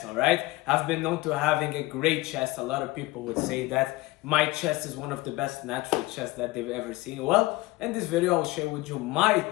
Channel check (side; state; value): right; quieter; 20.0 dB